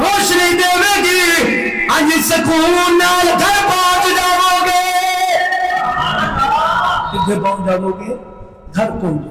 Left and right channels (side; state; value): both; identical; correlation 1.00